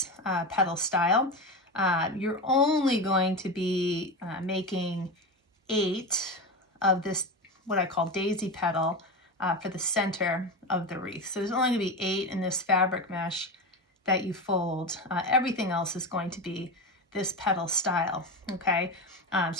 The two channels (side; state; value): both; normal; correlation 0.21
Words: petal style. You're only going to be making 8 of this, what I call daisy petal, for the center of the wreath. So there's only going to be 8 in this fabric mesh that you fold. Everything else is going to be this petal style, okay?